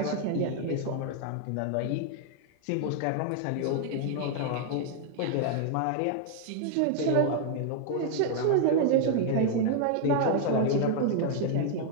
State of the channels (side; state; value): both; different; correlation 0.00